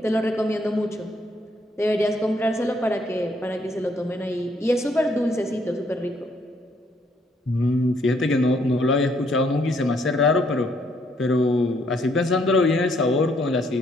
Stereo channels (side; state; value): both; normal; correlation 0.69